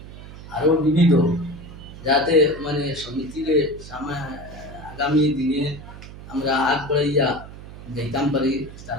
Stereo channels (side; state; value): right; noise; hum, 15 dB below the sound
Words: আরও বিবিধ, যাতে মানে সমিতির আগামী দিনে আমরা আগ বাড়াইয়া যাইতাম পারি,